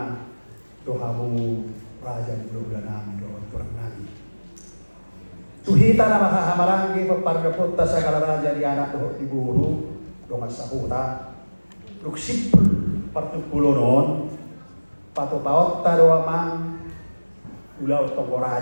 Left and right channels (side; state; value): both; inverted; correlation -1.00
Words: tuhamu raja bulan nami doon turang nami tuhita na makahamarangi papargaputta sa kalaraja di anak doon iburu doon sahuta luksipul partupulo noon patupaot doa mang ulaw toko